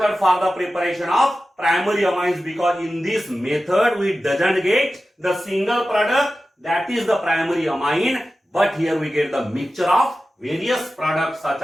for the preparation of primary amines, because in this method we doesn't get the single product, that is the primary amine, but here we get the mixture of various products such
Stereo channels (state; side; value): normal; both; correlation 0.94